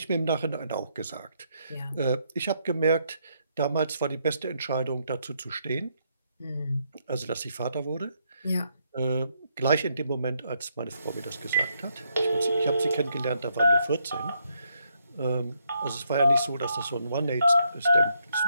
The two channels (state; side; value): inverted; both; correlation -0.76